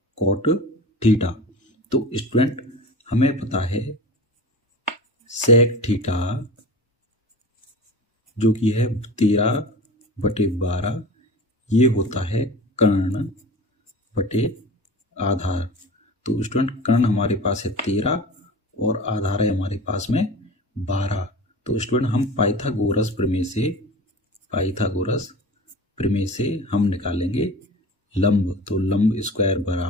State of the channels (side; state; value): both; normal; correlation 0.34